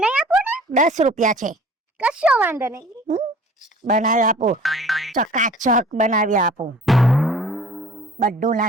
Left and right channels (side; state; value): both; normal; correlation 0.48